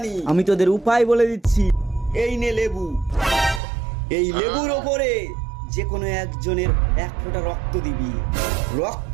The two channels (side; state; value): left; drops out; at 3.6 s